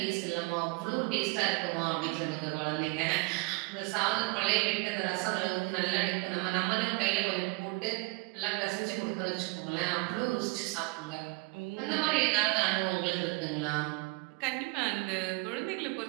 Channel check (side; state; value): left; quieter; 29.0 dB